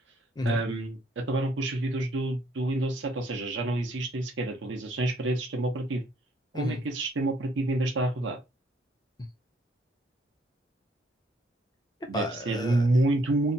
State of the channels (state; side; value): normal; both; correlation 0.67